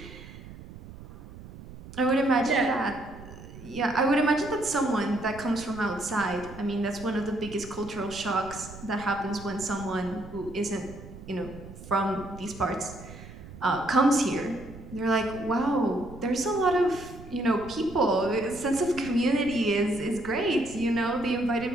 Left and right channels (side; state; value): right; noise; rumble, 15 dB below the sound